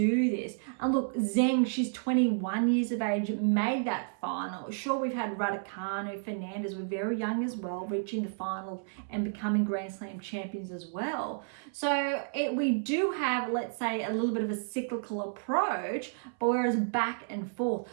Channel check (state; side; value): silent; left; 57 dB below the other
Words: this. And look, Zheng, she's 21 years of age, made that final. Sure, we've had Raducanu, Fernandez were very young as well, reaching the final and becoming Grand Slam champions as well. So we do have, let's say, a little bit of a cyclical approach, but whereas back and forth.